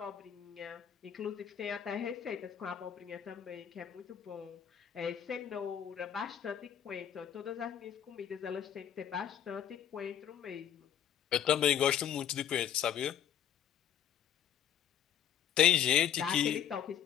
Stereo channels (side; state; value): right; quieter; 9.5 dB